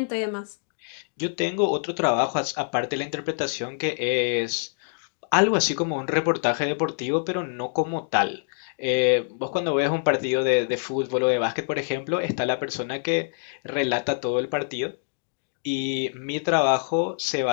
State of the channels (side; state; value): right; silent; digital silence